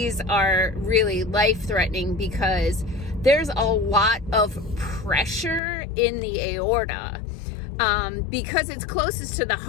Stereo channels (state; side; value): drops out; right; at 5.6 s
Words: are really life-threatening because there's a lot of pressure in the aorta. Because it's closest to the